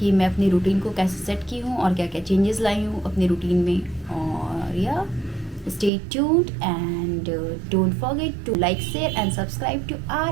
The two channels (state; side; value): drops out; left; at 5.9 s